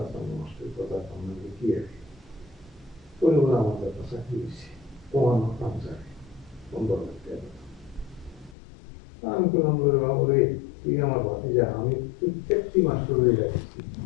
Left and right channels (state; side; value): drops out; right; at 8.6 s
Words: মাস্টার কথা আপনাকে কি আছে পরিবার আমার একটা চাকরি হয়েছে পোহানো কামচারে 15 লাখ টাকা। আমি করলাম বাবুরে তুই আমার ভাতিজা, আমি প্রত্যেকটি মাস্টারে যাচ্ছি